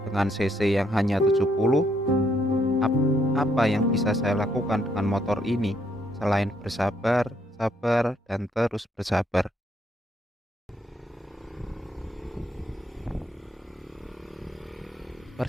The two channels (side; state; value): both; normal; correlation 0.72